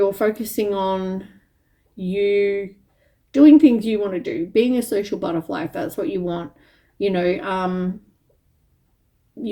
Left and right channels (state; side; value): identical; both; correlation 1.00